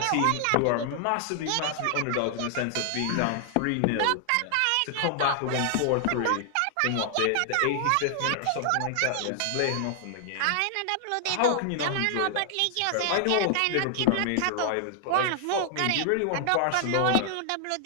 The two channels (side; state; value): both; different; correlation 0.00